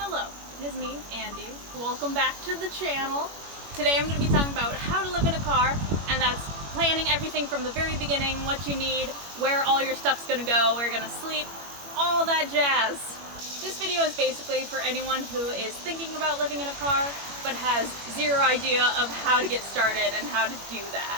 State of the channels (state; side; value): late; left; 21 ms